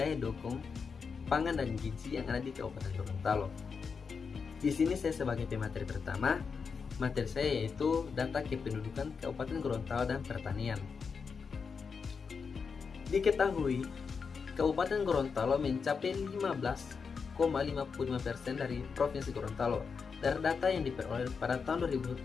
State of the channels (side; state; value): right; quieter; 5.6 dB